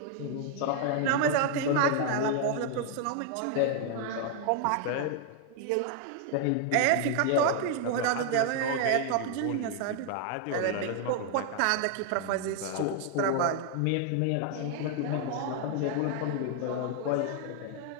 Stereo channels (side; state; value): both; different; correlation 0.00